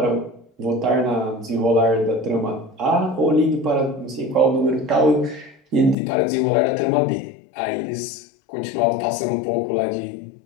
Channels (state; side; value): drops out; right; at 6.0 s